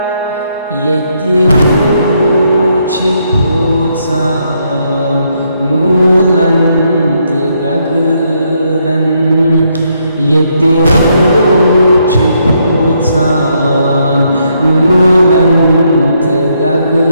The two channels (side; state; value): both; inverted; correlation -0.75